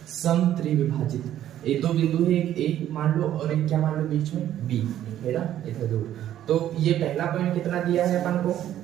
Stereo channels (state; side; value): quieter; left; 11.8 dB